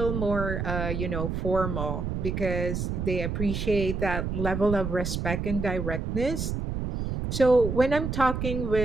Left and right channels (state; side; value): noise; right; rumble, 3 dB below the sound